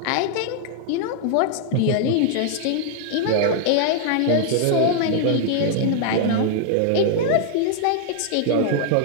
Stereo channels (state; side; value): different; both; correlation 0.00